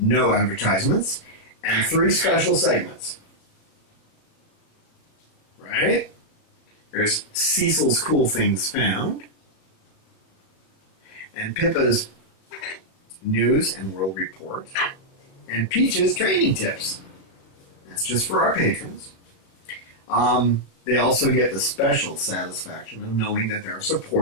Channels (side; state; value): right; late; 36 ms